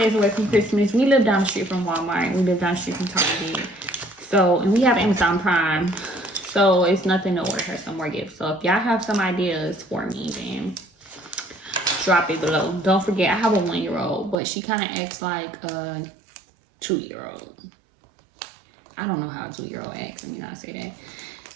away from Christmas, we live down the street from Walmart. We live down the street from Target. So, and we have Amazon Prime. So it's nothing to order her some more gifts. So if y'all have some ideas for me, then drop it below. Don't forget, I have a 1-year-old, but she kind of acts like a 2-year-old. I don't know how a 2-year-old acts. I mean, I say that.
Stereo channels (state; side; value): drops out; left; at 14.4 s